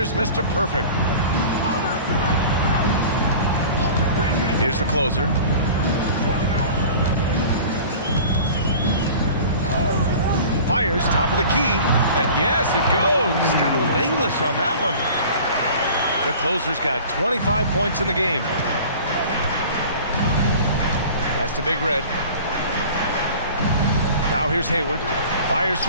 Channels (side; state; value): both; inverted; correlation -0.42